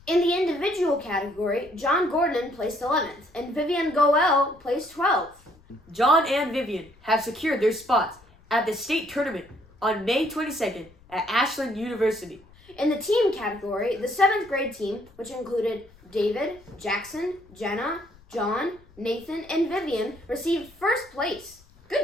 In the individual category, John Gordon placed 11th and Vivian Goel placed 12th. John and Vivian have secured their spots at the state tournament on May 22nd at Ashland University. In the team category, the 7th grade team, which included David, Jackson, Jenna, John, Nathan, and Vivian, received 1st place.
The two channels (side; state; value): left; noise; rumble, 27 dB below the sound